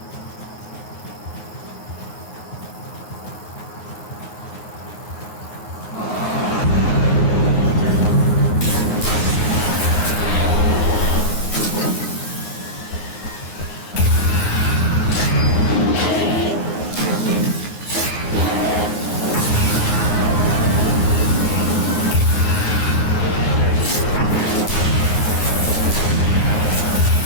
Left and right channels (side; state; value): right; late; 9.6 ms